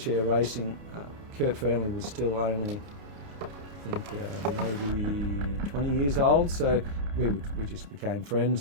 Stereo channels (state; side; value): late; left; 29 ms